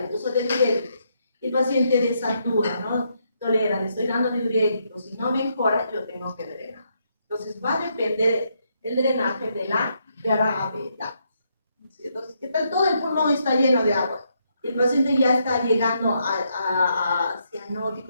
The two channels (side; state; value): both; inverted; correlation -0.77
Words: uso de diuréticos, y el paciente desatura, no tolera, le estoy dando diuréticos y no mejora, yo tengo que drenar. Entonces va a depender el drenaje de la gravedad. Entonces, ¿qué tal? Todo el pulmón está lleno de agua. El paciente ya está llegando a